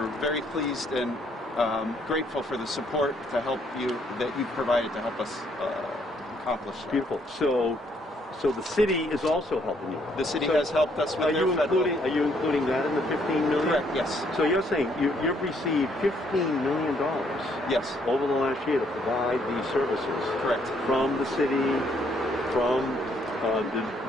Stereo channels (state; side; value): normal; both; correlation 0.69